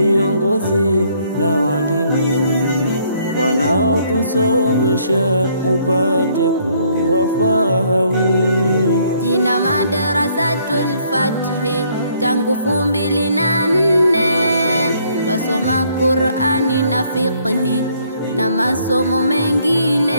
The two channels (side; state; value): both; inverted; correlation -0.66